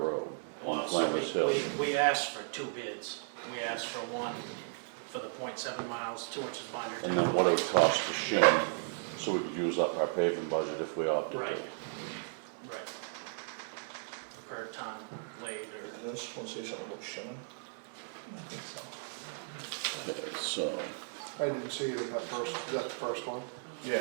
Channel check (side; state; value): left; silent; digital silence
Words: on Well, so Flanders Hill. we asked for 2 bids. We asked for one for the 0.7 miles, 2 inches binder. And then what it would cost to shim, so we could use up our paving budget if we opted Right, to. right. Per ton laid or. Does this one say something about shimming? I think so. Okay, so, I didn't see it in that first, is that the first one?